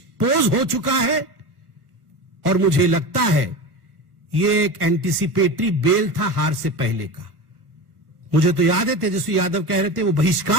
हो चुका है। और मुझे लगता है ये एक एंटीसिपेटरी बेल था हार से पहले का। मुझे तो याद है तेजस्वी यादव कह रहे थे वो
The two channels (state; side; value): late; left; 1.3 ms